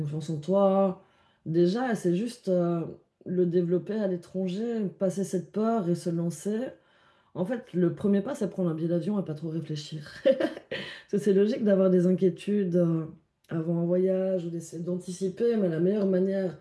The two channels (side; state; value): both; identical; correlation 1.00